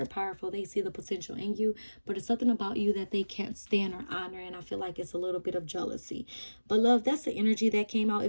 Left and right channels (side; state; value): both; inverted; correlation -1.00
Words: powerful. They see the potential in you, but it's something about you that they can't stand or honor. And I feel like it's a little bit of jealousy. But love, that's the energy that came out.